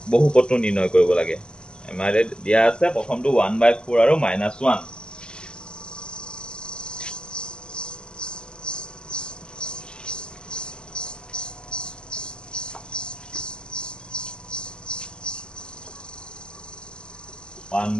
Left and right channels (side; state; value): right; late; 0.048 ms